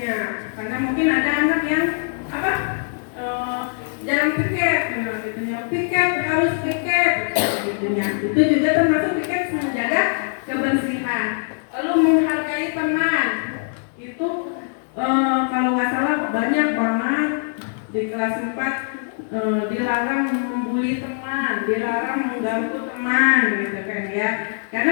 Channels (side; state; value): right; silent; digital silence